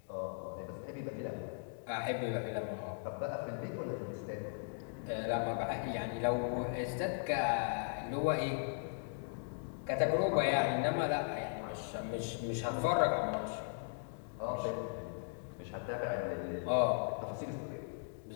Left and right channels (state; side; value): silent; right; digital silence